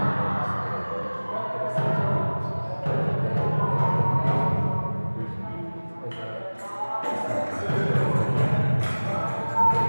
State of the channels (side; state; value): both; inverted; correlation -1.00